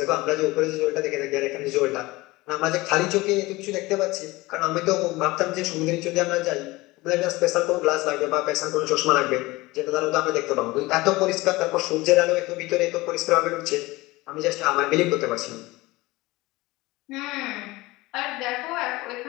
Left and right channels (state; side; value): quieter; right; 20.9 dB